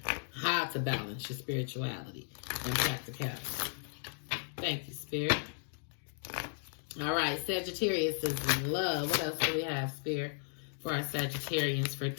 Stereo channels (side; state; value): right; silent; digital silence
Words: How to balance your spirituality and practicality. Thank you, Spirit. All right, Sagittarius is in love. What else do we have, Spirit, for our Sagittarians for